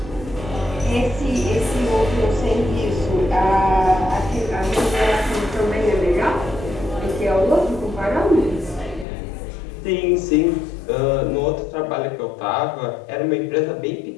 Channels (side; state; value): right; drops out; at 9.1 s